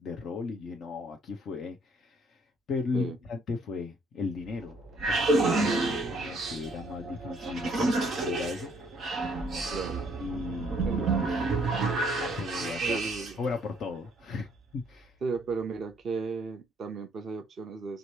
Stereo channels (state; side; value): normal; both; correlation 0.65